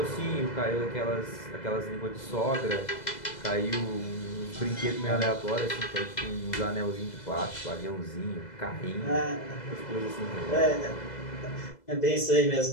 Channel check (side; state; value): right; late; 2.0 ms